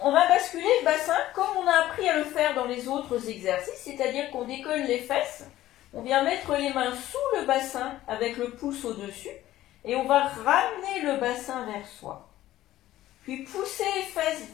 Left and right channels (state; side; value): quieter; right; 14.5 dB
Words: va basculer le bassin comme on a appris à le faire dans les autres exercices, c'est-à-dire qu'on décolle les fesses, on vient mettre les mains sous le bassin avec le pouce au-dessus et on va ramener le bassin vers soi. Puis pousser les fesses